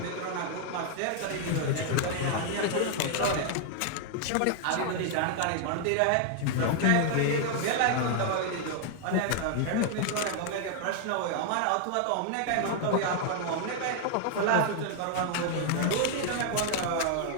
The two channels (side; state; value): both; different; correlation 0.00